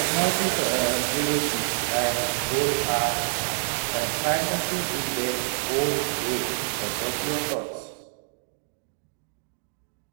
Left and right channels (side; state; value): left; silent; digital silence